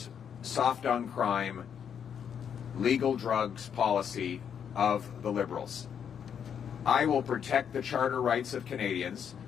soft on crime, legal drugs policy of the Liberals. I will protect the charter rights of Canadians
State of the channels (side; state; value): right; quieter; 8.0 dB